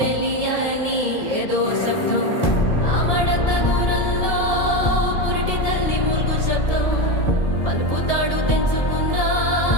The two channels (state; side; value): late; right; 1.7 ms